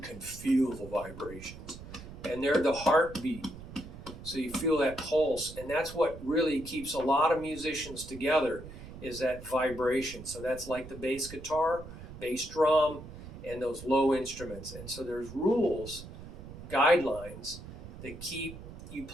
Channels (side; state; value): right; noise; rumble, 13 dB below the sound